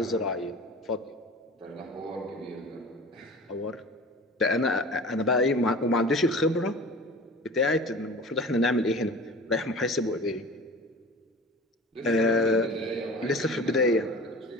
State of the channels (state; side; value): normal; both; correlation 0.39